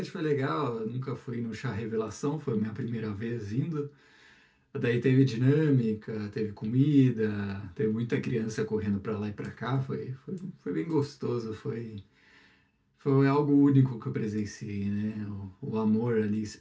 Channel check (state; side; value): identical; both; correlation 1.00